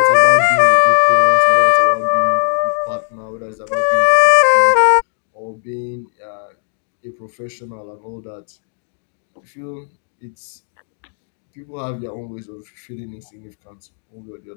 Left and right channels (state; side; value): silent; right; digital silence